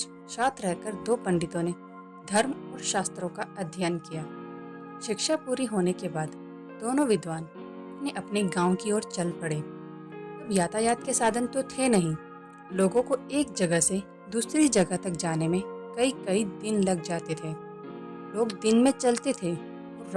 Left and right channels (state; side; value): identical; both; correlation 1.00